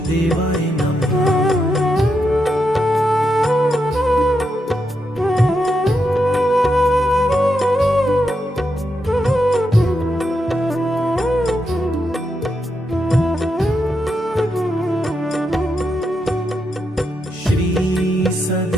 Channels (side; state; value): both; normal; correlation 0.83